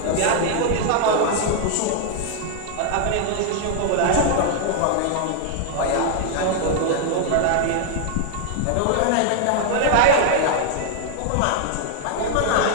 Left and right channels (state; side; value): different; both; correlation 0.00